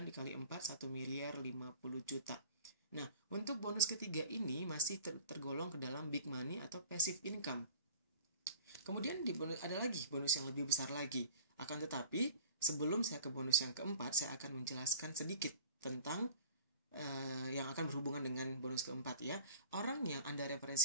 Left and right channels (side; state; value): both; inverted; correlation -0.46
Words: dikali 4, 1.050 juta. Nah, untuk bonus ketiga ini masih tergolong ke dalam big money atau passive income. Kemudian ada lagi bonus yang lebih besar lagi. Akan tetapi, sebelum saya ke bonus yang keempat, saya akan menjelaskan sedikit tentang yang akan berhubungan dengan bonus keempat ya. Orang yang Anda